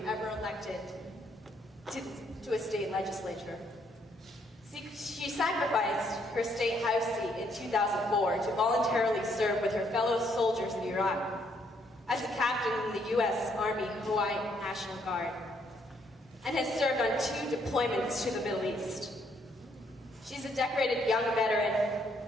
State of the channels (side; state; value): both; normal; correlation 0.70